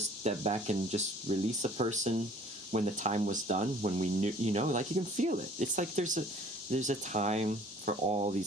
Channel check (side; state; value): both; normal; correlation 0.53